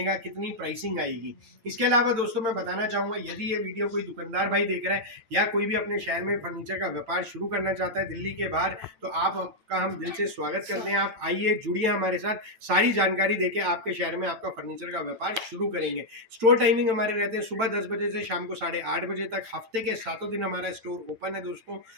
कितनी प्राइसिंग आएगी। इसके अलावा दोस्तों मैं बताना चाहूंगा, यदि ये वीडियो कोई दुकानदार भाई देख रहा है या कोई भी अपने शहर में फर्नीचर का व्यापार शुरू करना चाहता है दिल्ली के बाहर, तो आपका हम दिल से स्वागत करते हैं। आप आइए, जुड़िए हमारे साथ, सारी जानकारी देके आपके शहर में आपका फर्नीचर का व्यापार शुरू करेंगे। स्टोर टाइमिंग हमारे रहते हैं सुबह 10 बजे से शाम को 8:30 बजे तक। हफ्ते के 7 दिन हमारा स्टोर ओपन है दोस्तों।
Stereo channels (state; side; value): late; left; 9.0 ms